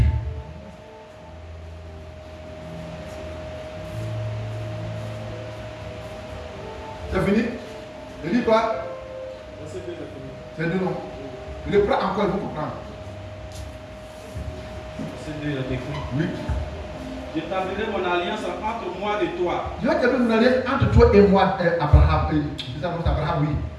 C'est fini? Je dis quoi? C'est deux noms. Je le prends encore, il faut comprendre. C'est deux, il a décrit. Oui. J'établirai mon alliance entre moi et toi. Je vais établir mon alliance entre toi et moi, Abraham. Abraham, oui.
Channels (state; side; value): identical; both; correlation 1.00